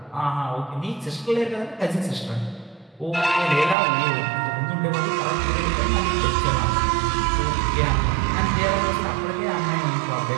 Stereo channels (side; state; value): left; drops out; at 3.8 s